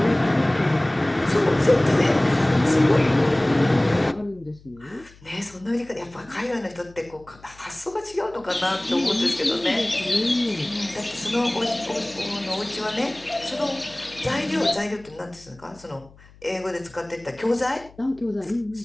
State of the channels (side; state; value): left; noise; hum, 25 dB below the sound